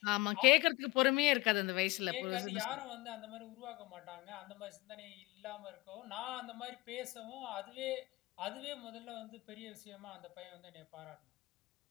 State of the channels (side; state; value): right; quieter; 21.7 dB